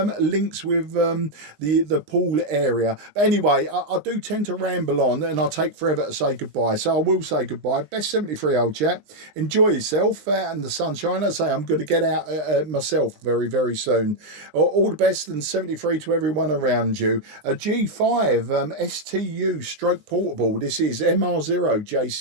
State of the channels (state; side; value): late; left; 20 ms